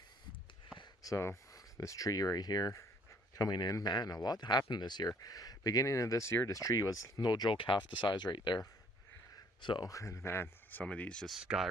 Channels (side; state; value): both; normal; correlation 0.60